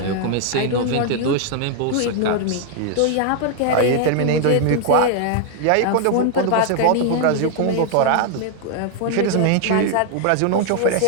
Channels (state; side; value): different; both; correlation 0.00